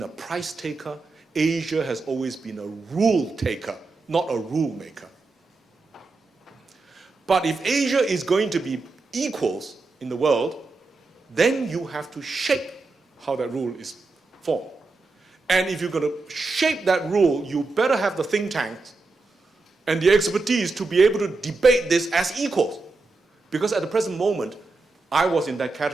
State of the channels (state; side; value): quieter; left; 3.7 dB